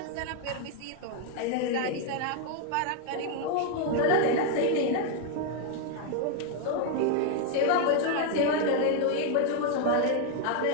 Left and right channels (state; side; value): different; both; correlation 0.01